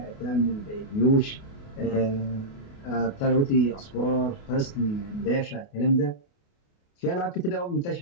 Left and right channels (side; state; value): right; late; 28 ms